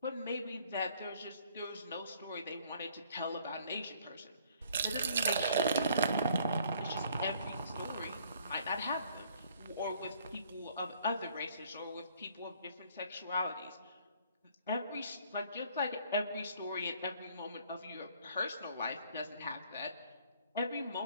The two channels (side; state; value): both; inverted; correlation -0.60